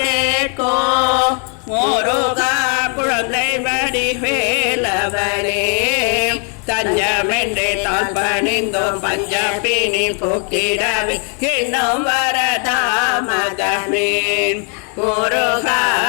கேட்கோ, முருகா குழந்தை வடி வேலவனே. தஞ்சமென்றே தான் பணிந்தோம் பஞ்சப்பினி போக்கிடவே இன்னும் வரதாமதமே. முருகா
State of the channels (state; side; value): quieter; right; 39.6 dB